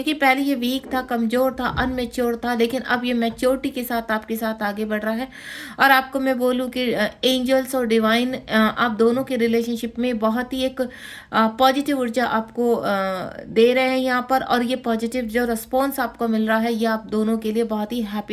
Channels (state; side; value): identical; both; correlation 1.00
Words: पहले ये वीक था, कमजोर था, अनमेच्योर था, लेकिन अब ये मैच्योरिटी के साथ आपके साथ आगे बढ़ रहा है। और आपको मैं बोलूँ कि एंजल्स और डिवाइन आप दोनों के रिलेशनशिप में बहुत ही एक पॉजिटिव ऊर्जा आपको दे रहे हैं यहाँ पर। और ये पॉजिटिव जो रिस्पॉन्स आपको मिल रहा है, ये आप दोनों के लिए बहुत ही